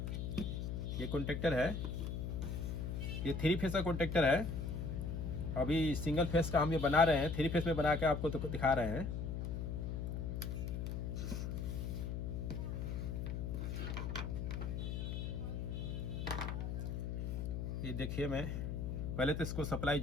ये कॉन्टैक्टर है, ये 3 फेस का कॉन्टैक्टर है। अभी सिंगल फेस का हम ये बना रहे हैं, 3 फेस में बना के आपको तो दिखा रहे हैं। ये देखिए, मैं पहले तो इसको सप्लाई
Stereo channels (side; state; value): left; noise; hum, 2 dB below the sound